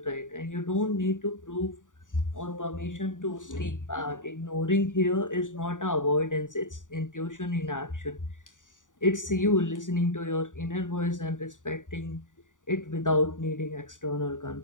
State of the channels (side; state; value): right; late; 0.88 ms